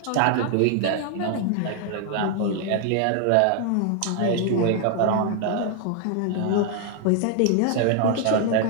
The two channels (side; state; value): both; different; correlation 0.00